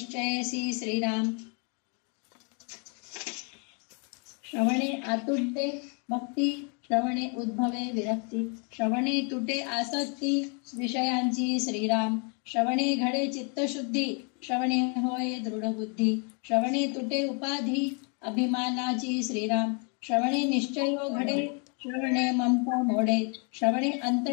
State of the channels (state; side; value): quieter; right; 36.6 dB